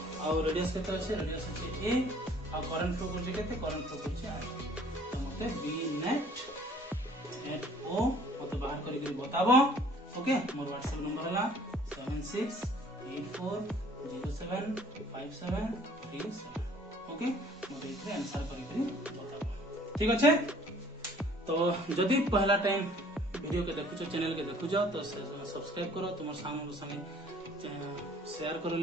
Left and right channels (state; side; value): normal; both; correlation 0.55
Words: और रेडियस केते আছে रेडियस আছে a और करंट फ्लो करजे केते करंट फ्लो करजे i बी नेट एट ओ मते बाहर करी करी बताबो। ओके मोर व्हाट्सएप नंबर हला 7684075737 ओके मते इथरे आंसर करी करी बताबो ठीक अच्छे। तो जदी पहला टाइम वीडियो के देखुछो चैनल के देखुछो तो सब्सक्राइब करो तुम सामने संगे शेयर करो